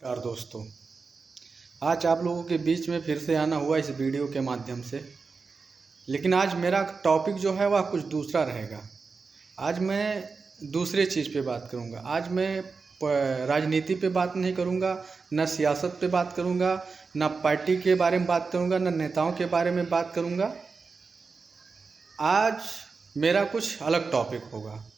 दोस्तों, आज आप लोगों के बीच में फिर से आना हुआ इस वीडियो के माध्यम से। लेकिन आज मेरा टॉपिक जो है वह कुछ दूसरा रहेगा। आज मैं दूसरे चीज़ पे बात करूँगा। आज मैं राजनीति पे बात नहीं करूँगा, न सियासत पे बात करूँगा, न पार्टी के बारे में बात करूँगा, न नेताओं के बारे में बात करूँगा। आज मेरा कुछ अलग टॉपिक होगा।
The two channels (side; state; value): left; quieter; 4.7 dB